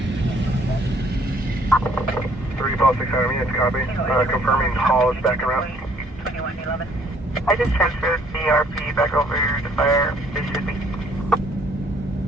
600 minutes, copy. Confirming haul is back around. 2111. I just transferred the RP back over to fire. This should be.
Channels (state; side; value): normal; both; correlation 0.62